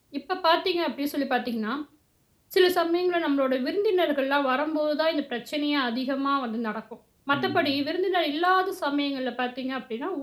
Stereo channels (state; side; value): identical; both; correlation 1.00